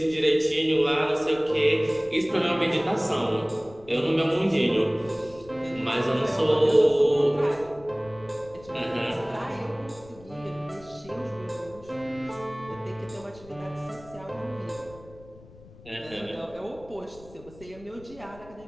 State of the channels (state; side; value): noise; left; rumble, 21 dB below the sound